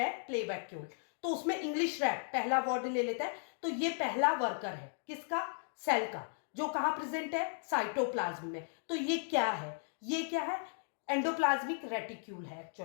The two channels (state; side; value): silent; right; digital silence